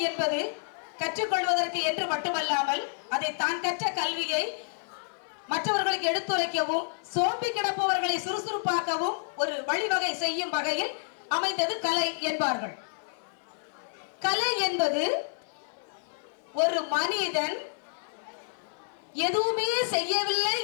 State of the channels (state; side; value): silent; right; digital silence